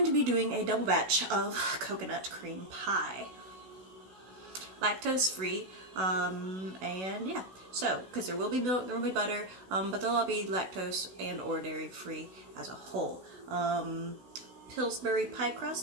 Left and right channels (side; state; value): left; late; 16 ms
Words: to be doing a double batch of coconut cream pie. Lactose free, and yeah. So, because there will be milk, there will be butter, but they'll all be lactose and or dairy free as a whole. Pillsbury pie